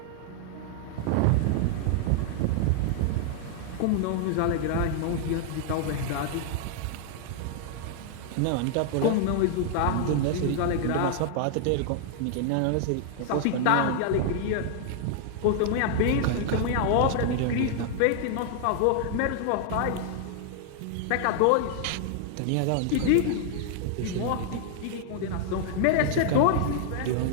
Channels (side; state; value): both; different; correlation -0.01